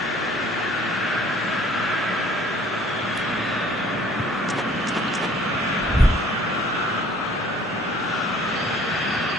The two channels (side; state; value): both; normal; correlation 0.55